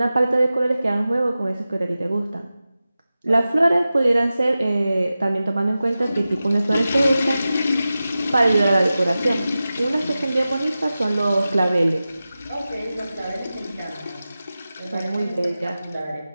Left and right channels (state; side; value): inverted; both; correlation -0.94